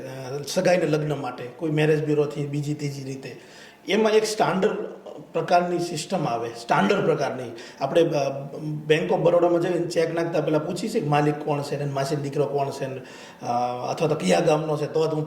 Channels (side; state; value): both; identical; correlation 1.00